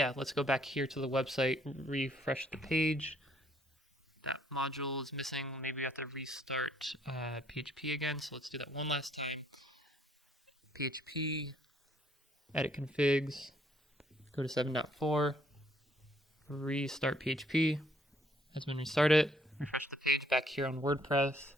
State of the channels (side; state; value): both; normal; correlation 0.66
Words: let's go back here to the website, refresh the page. That module is missing. Maybe we have to restart PHP again. So let's do that one last time. PHP, edit configs, go to 7.4, restart PHP. Has been restarted. Refresh the page back here on WordPress.